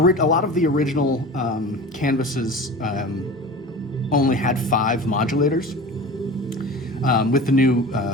lot of the original canvases only had 5 modulators. With the new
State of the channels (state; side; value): normal; both; correlation 0.35